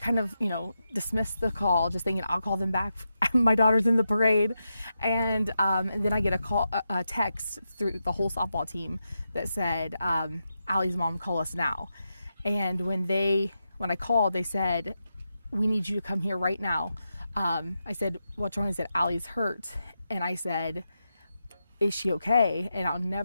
of, dismissed the call, just thinking I'll call them back. My daughter's in the parade. And then I get a text through the whole softball team that said, Allie's mom, call us now. And when I called, they said, we need you to come here right now. I said, what's wrong? He said, Allie's hurt. And I said, is she okay?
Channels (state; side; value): inverted; both; correlation -0.87